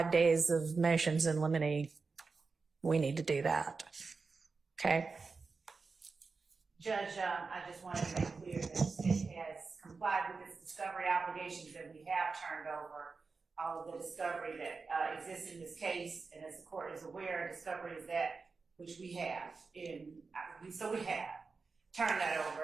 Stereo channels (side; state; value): left; quieter; 4.4 dB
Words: days of motions in limine, we need to do that. Okay. Judge, I just wanted to make clear that the state has complied with its discovery obligations, and we have turned over all of the discovery that exists in this case. And as the court is aware, discovery is that which we have so we have turned that over,